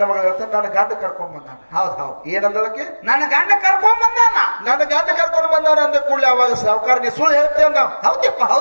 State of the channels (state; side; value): inverted; both; correlation -1.00